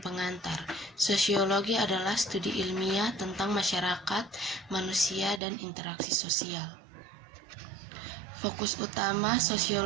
Sosiologi adalah studi ilmiah tentang masyarakat, manusia, dan interaksi sosial. Fokus utama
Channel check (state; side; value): drops out; left; at 5.4 s